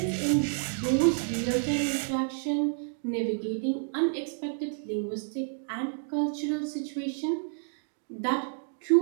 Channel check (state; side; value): silent; left; digital silence